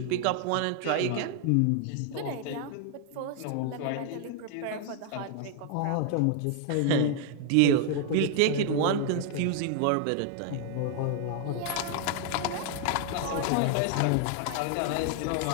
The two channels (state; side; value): different; both; correlation 0.00